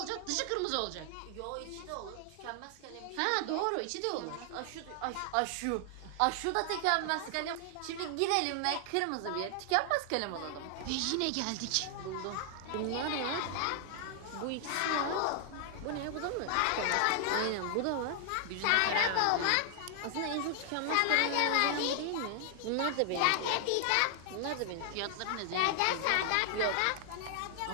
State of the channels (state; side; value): different; both; correlation 0.00